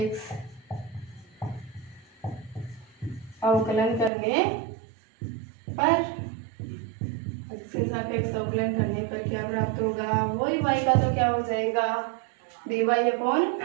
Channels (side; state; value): left; drops out; at 4.1 s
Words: अवकलन करने पर, x के सापेक्ष अवकलन करने पर क्या प्राप्त होगा, वही y का तो क्या हो जाएगा